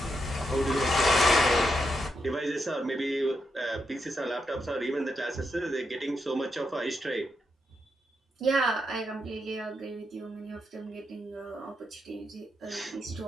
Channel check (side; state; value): both; normal; correlation 0.83